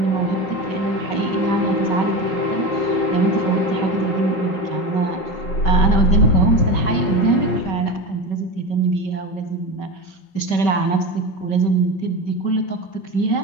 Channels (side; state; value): right; late; 5.3 ms